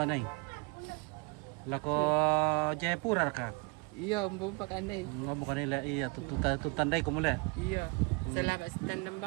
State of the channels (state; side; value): quieter; left; 29.9 dB